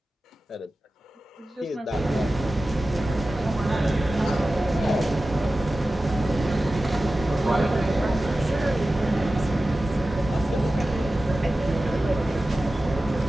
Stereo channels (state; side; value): normal; both; correlation 0.95